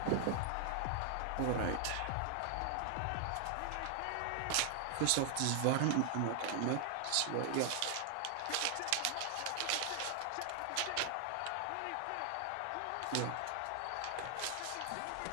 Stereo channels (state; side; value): different; both; correlation 0.00